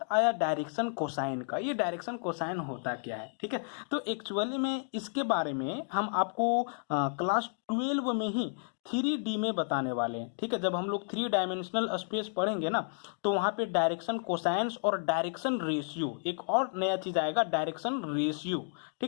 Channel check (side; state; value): right; silent; digital silence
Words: आया डायरेक्शन कोसाइन का, ये डायरेक्शन कोसाइन होता क्या है, ठीक है। तो एक्चुअली में इसके बारे में हम आपको क्लास 12 में ही 3D में बताने वाले हैं, ठीक है। जब हम लोग 3 डायमेंशनल स्पेस पढ़ेंगे ना, तो वहां पे डायरेक्शन कोसाइंस और डायरेक्शन रेशियो, एक और नया चीज आएगा डायरेक्शन रेशियो,